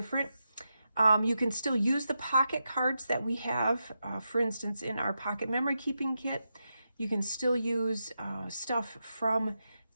You can still use the pocket cards that we have, for instance, in our pocket memory keeping kit. You can still use stuff from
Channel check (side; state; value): both; inverted; correlation -0.87